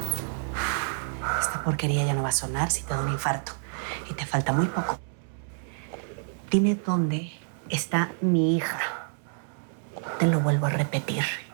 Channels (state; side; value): silent; left; 59 dB below the other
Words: Esta porquería ya no va a sonar si te da un infarto. Y te falta muy poco. Dime dónde está mi hija. Te lo vuelvo a repetir.